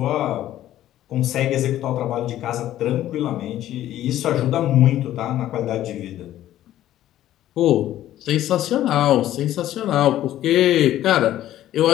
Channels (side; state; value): right; quieter; 13.1 dB